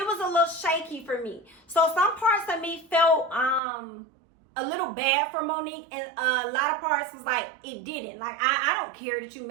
was a little shaky for me. So some parts of me felt a little bad for Monique, and a lot of parts was like, it didn't. Like, I don't care that you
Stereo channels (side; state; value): left; drops out; at 3.6 s